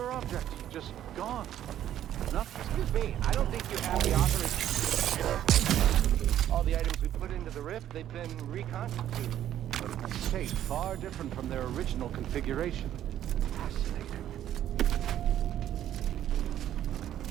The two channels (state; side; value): quieter; left; 11.5 dB